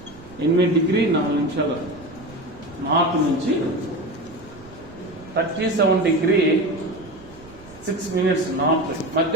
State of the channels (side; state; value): right; noise; rumble, 22 dB below the sound